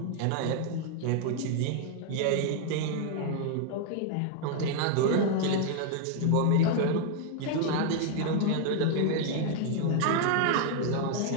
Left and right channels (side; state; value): both; different; correlation 0.00